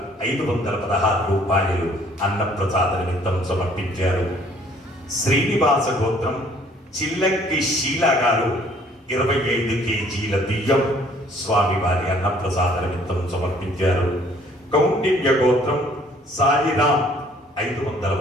516 రూపాయలు అన్నప్రసాద నిమిత్తం సమర్పించారు. శ్రీనివాస గోత్రం చిల్లంకి శీల గారు 25 కేజీల బియ్యం స్వామివారి అన్నప్రసాద నిమిత్తం సమర్పించారు. కౌండిన్య గోత్రం సాయిరాం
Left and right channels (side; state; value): both; normal; correlation 0.59